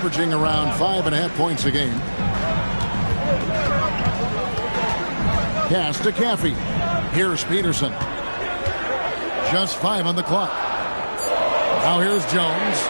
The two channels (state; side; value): inverted; both; correlation -1.00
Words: around 5.5 points a game. Pass to Caffey. Here's Peterson. Just 5 on the clock. Now here's Jones.